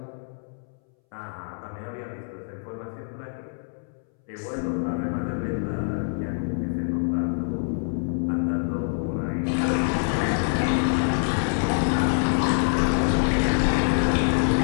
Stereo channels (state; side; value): silent; right; 61 dB below the other